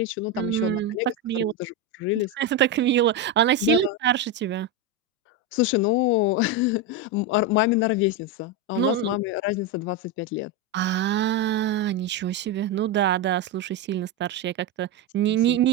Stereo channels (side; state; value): both; normal; correlation 0.10